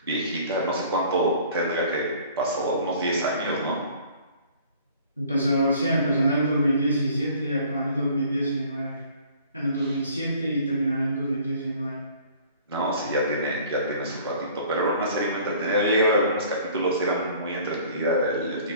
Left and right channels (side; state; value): both; inverted; correlation -0.51